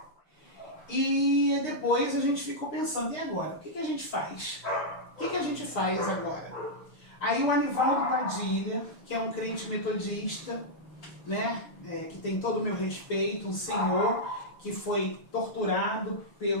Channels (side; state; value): right; late; 6.4 ms